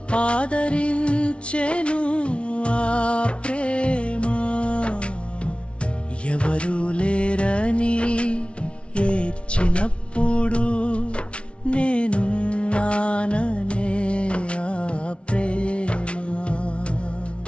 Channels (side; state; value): right; late; 0.060 ms